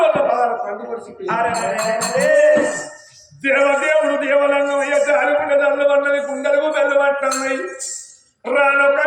పదాలు పండు పరిస్థితి దేవదేవుడు దేవలంగం అయ్యే జాలిగుండ దళ్ళు పన్నది గుండెలకు బెల్లు పట్టున్నాయి రానొక్క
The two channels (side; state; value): both; identical; correlation 1.00